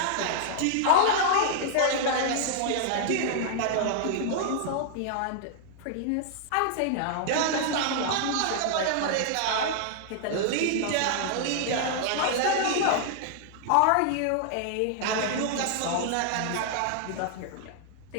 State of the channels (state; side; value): different; both; correlation -0.01